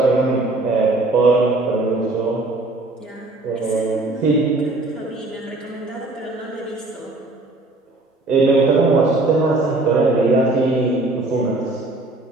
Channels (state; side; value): quieter; left; 3.0 dB